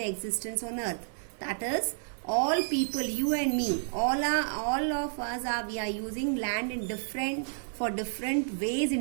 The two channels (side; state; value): left; silent; digital silence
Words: existence on earth. That is, all people, you and me, all of us we are using land in different